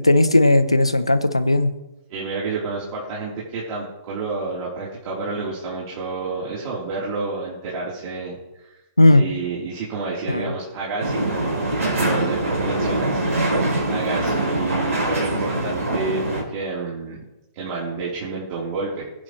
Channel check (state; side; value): inverted; both; correlation -0.72